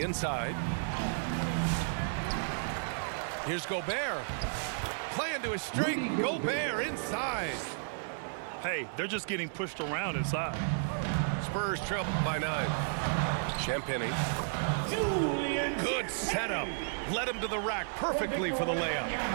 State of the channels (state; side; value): silent; left; digital silence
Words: inside. Here's Gobert. Playing to his strength. Gobert inside. Hey, they're just getting pushed around inside. Spurs trail by 9. Champagny. Good setup. Led him to the rack perfectly for the layup.